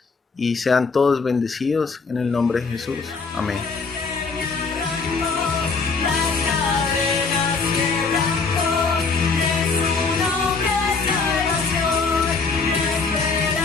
y sean todos bendecidos en el nombre de Jesús. Amén.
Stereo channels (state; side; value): quieter; right; 4.6 dB